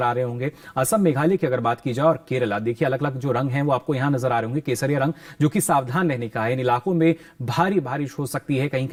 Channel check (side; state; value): both; identical; correlation 1.00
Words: आ रहे होंगे। असम, मेघालय की अगर बात की जाए और केरला, देखिए अलग अलग जो रंग हैं वो आपको यहां नजर आ रहे होंगे। केसरिया रंग जो कि सावधान रहने का है, इन इलाकों में भारी बारिश हो सकती है, कहीं